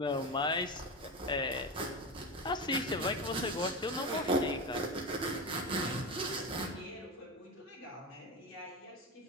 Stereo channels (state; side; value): normal; both; correlation 0.21